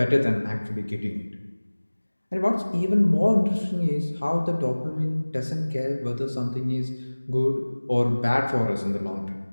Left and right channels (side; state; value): both; inverted; correlation -1.00